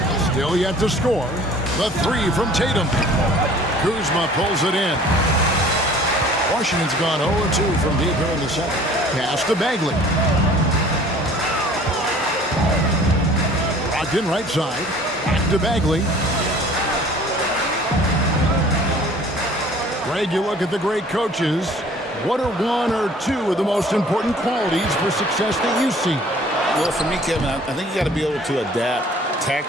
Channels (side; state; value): both; normal; correlation 0.50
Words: Still yet to score. The 3 from Tatum. Kuzma pulls it in. Washington's gone 0-2 from deep here in the second. Pass to Bagley. Brogdon right side. Back to Bagley. Greg, you look at the great coaches. What are 1 or 2 of the most important qualities for success that you see? Well, for me, Kevin, I think you got to be able to adapt